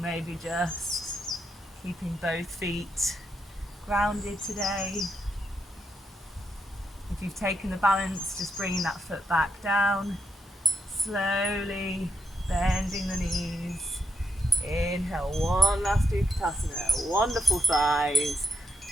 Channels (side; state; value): both; normal; correlation 0.79